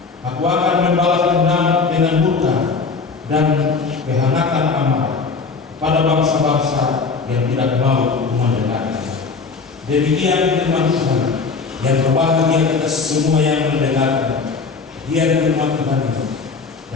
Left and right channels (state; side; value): quieter; right; 4.6 dB